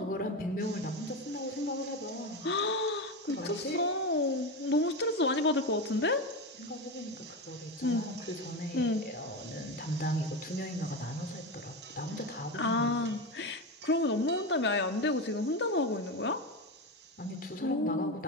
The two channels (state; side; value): normal; both; correlation 0.19